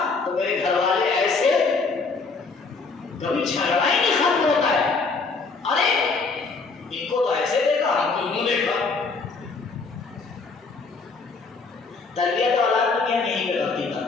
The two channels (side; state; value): right; quieter; 4.3 dB